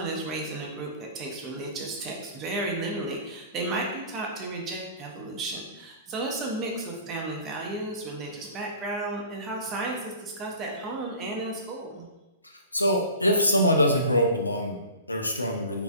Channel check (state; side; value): inverted; both; correlation -0.40